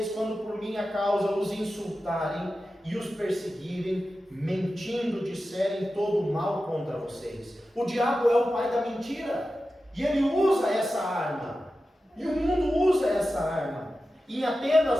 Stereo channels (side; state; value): both; normal; correlation 0.93